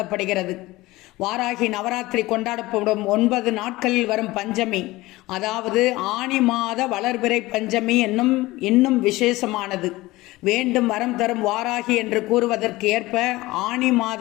வாராகி நவராத்திரி கொண்டாடப்படும் 9 நாட்களில் வரும் பஞ்சமி, அதாவது ஆனி மாத வளர்பிறை பஞ்சமி இன்னும் விசேஷமானது. வேண்டும் வரம் தரும் வாராகி என்று கூறுவதற்கு ஏற்ப ஆனி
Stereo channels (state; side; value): quieter; right; 19.4 dB